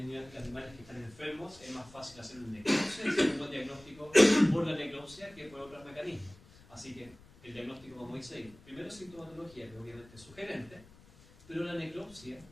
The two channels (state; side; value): noise; left; rumble, 23 dB below the sound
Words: animales que están enfermos, es más fácil hacer un necropsia y hacer un buen diagnóstico por la necropsia que por otros mecanismos. Así que el diagnóstico, como dice ahí, primero sintomatología, que obviamente es sugerente, pero la necropsia,